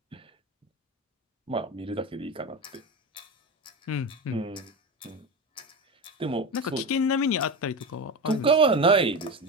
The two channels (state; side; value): normal; both; correlation 0.22